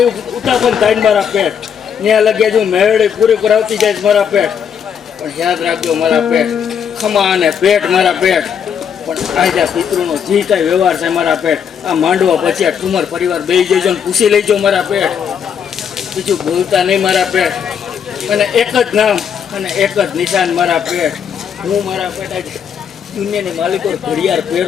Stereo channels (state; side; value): quieter; right; 7.7 dB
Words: ઉતાપન થાય મારા પેટ ત્યાં લગી હજુ મેળી પૂરી કરાવતી જાય મારા પેટ પણ યાદ રાખજો મારા પેટ ખમા અને પેટ મારા પેટ પણ આજે આ પિતૃનો જે કાંઈ વ્યવહાર છે મારા પેટ, આ માંડવા પછી આ ઠુમર પરિવાર બેસી જજો ને પૂછી લેજો મારા પેટ. બીજું બોલતા નહીં મારા પેટ. અને એક જ નામ અને એક જ નિશાન મારા પેટ. હું મારા પેટ આજે દુનિયાની માલિકો ઘડિયાળ